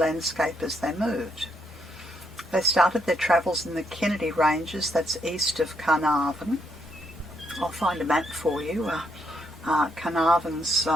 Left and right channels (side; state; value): both; normal; correlation 0.75